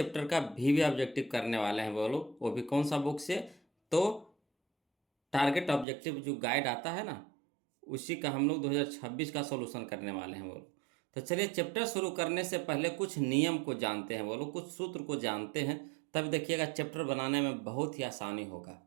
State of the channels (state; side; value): drops out; left; at 5.9 s